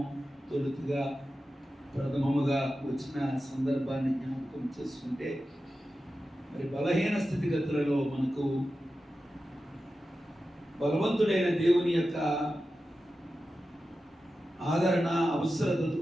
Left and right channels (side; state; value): both; normal; correlation 0.92